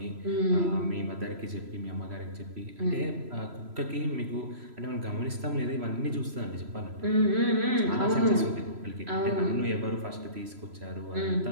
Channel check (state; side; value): late; left; 3.0 ms